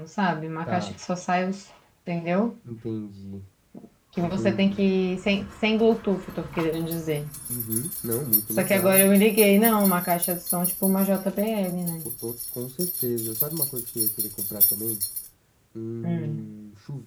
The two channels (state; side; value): identical; both; correlation 1.00